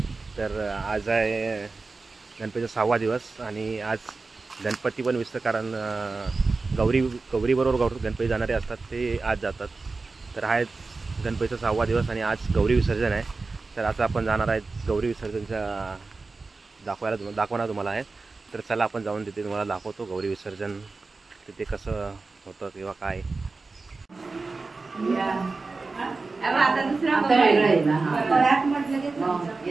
तर आज आहे गणपतीचा 6वा दिवस आणि आज गणपती पण विसर्जन, कारण गौरीबरोबर गणपती जाणारे असतात ते आज जातात। तर हा गणपतीचा 6वा दिवस आणि आज गौरी विसर्जन आहे। तर आता आपण जाणार आहे गौरी विसर्जनच्या दाखवणार तुम्हाला आहे। तर चला आपण जाऊन तिथे तुम्हाला दाखवतो गौरी विसर्जन तिथे कसं होतं किंवा काय। आता दुसरा वेगळा आहे ना, परत म्हटलं की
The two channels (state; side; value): quieter; left; 3.9 dB